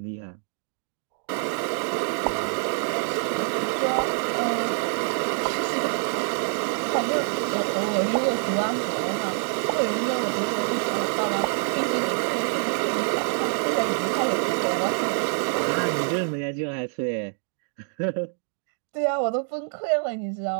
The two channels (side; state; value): left; silent; 61 dB below the other